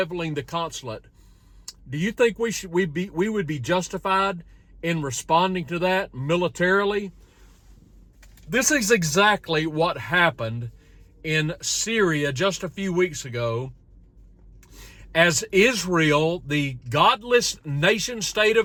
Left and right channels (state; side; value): identical; both; correlation 1.00